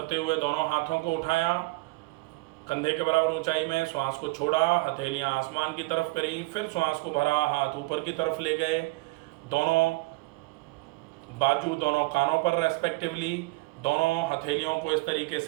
हुए दोनों हाथों को उठाया, कंधे के बराबर ऊंचाई में, श्वास को छोड़ा, हथेलियां आसमान की तरफ करी, फिर श्वास को भरा, हाथ ऊपर की तरफ ले गए, दोनों बाजू दोनों कानों पर रेस्पेक्टिवली, दोनों हथेलियों को इस तरीके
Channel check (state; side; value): quieter; left; 23.6 dB